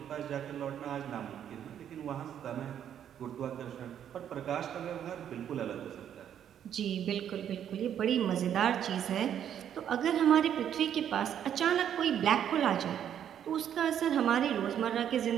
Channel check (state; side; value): quieter; left; 9.5 dB